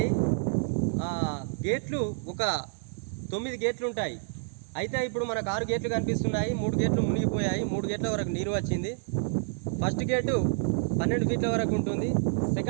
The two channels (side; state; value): left; silent; digital silence